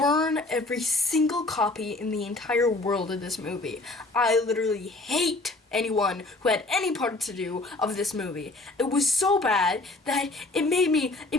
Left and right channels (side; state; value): right; quieter; 3.0 dB